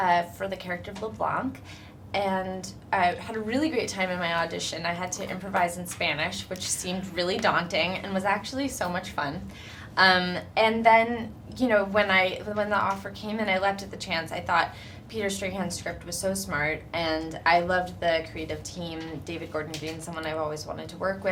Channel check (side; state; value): both; identical; correlation 1.00